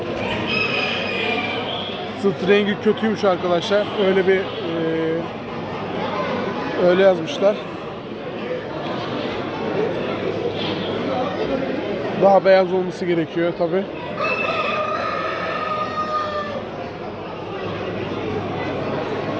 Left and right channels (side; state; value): both; identical; correlation 1.00